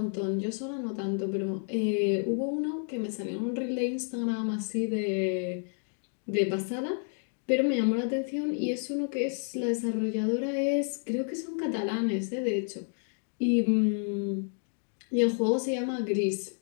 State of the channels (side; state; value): right; silent; 58 dB below the other